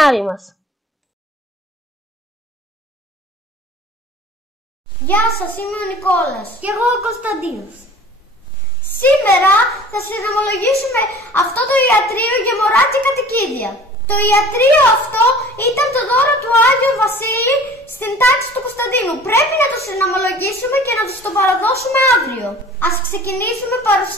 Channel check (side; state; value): both; normal; correlation 0.46